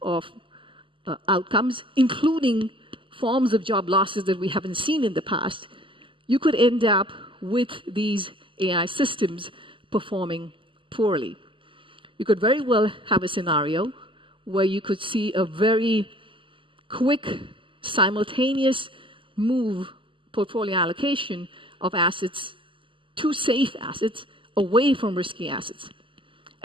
of outcomes, including forms of job losses that we haven't seen in the past, you could end up with these AI systems performing poorly. you could very well have a scenario where you could see a very quick, simultaneous move, portfolio allocation of assets to safe assets, away from risky assets.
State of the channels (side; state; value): left; late; 0.25 ms